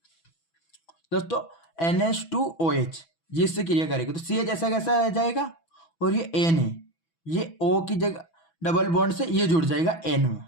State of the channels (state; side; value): late; right; 6.1 ms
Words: दोस्तों NH2OH ये इससे क्रिया करेगा तो CH ऐसा कैसा रह जाएगा, और ये N है, ये O की जगह डबल बॉन्ड से ये जुड़ जाएगा N में,